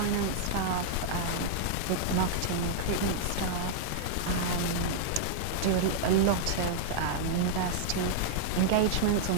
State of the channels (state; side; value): different; both; correlation -0.01